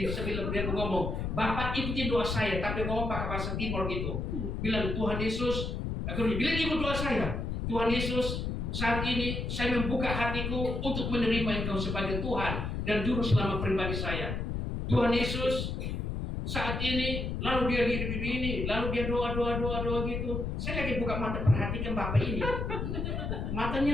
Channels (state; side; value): noise; left; rumble, 2 dB below the sound